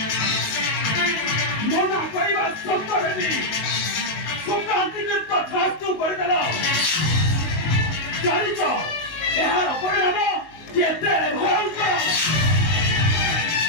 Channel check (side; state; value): right; late; 19 ms